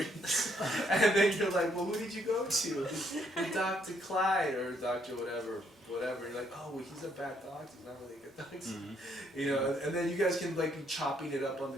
And then you're like, well, who did you go to? Dr. Clyde or Dr. whatever. You're like, oh, well, he's a bad doctor. He's not really a good doctor. And then you guys can like be chopping it up on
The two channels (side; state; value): both; normal; correlation 0.71